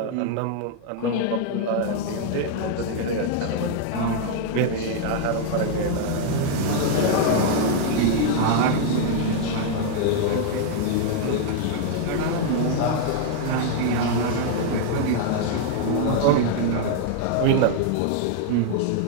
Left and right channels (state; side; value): different; both; correlation 0.00